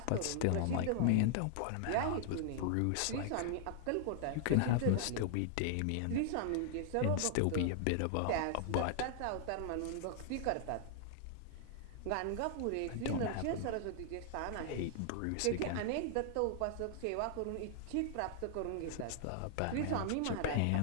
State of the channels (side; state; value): both; different; correlation 0.00